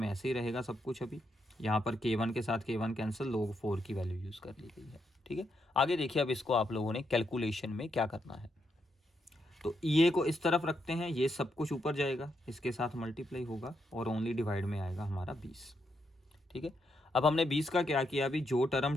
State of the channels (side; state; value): both; normal; correlation 0.80